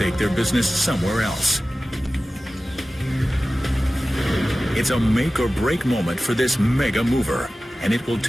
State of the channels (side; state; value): both; normal; correlation 0.96